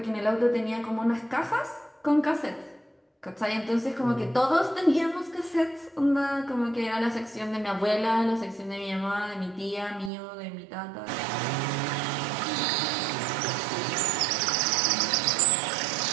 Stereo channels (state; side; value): drops out; left; at 10.1 s